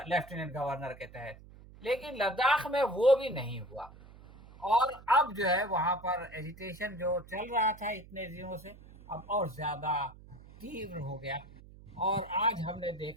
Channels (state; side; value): noise; right; hum, 20 dB below the sound